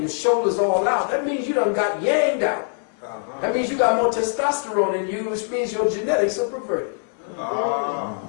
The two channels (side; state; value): right; silent; 57 dB below the other